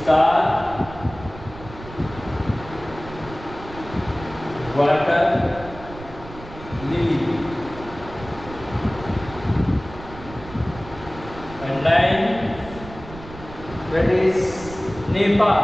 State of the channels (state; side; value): noise; right; rumble, 15 dB below the sound